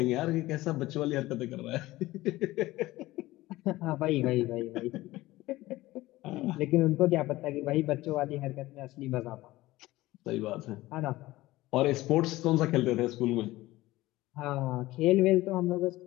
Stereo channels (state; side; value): quieter; right; 17.8 dB